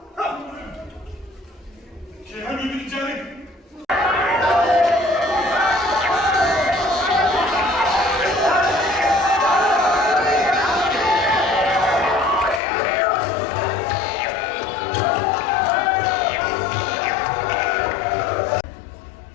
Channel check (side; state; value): right; drops out; at 12.6 s